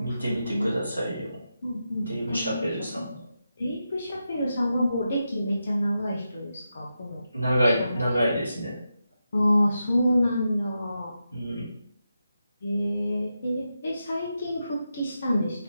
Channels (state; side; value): inverted; both; correlation -0.88